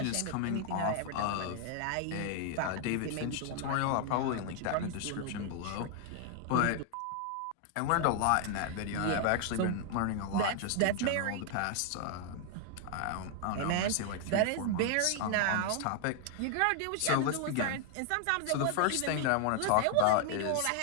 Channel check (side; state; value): both; different; correlation 0.00